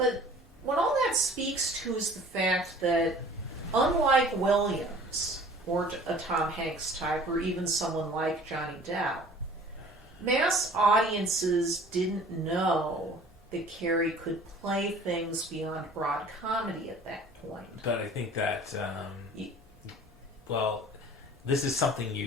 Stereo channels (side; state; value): both; normal; correlation 0.48